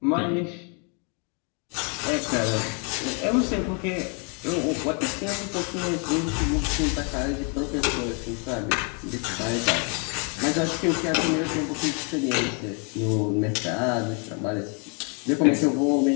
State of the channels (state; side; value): quieter; right; 36.0 dB